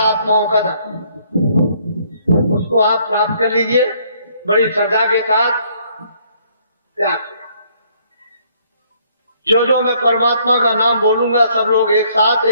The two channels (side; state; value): both; inverted; correlation -0.65